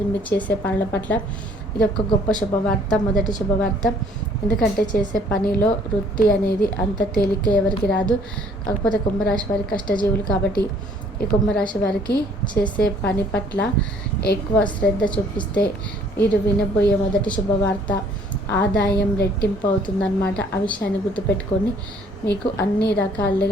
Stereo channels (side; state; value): both; normal; correlation 0.59